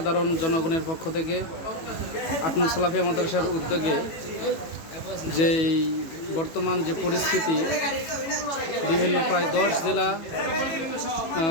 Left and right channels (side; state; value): right; late; 18 ms